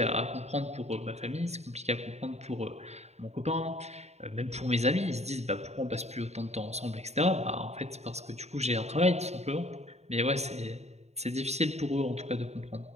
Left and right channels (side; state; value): left; late; 0.32 ms